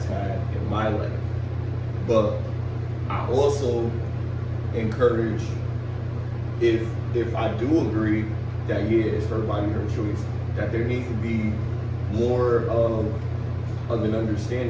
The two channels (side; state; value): both; identical; correlation 1.00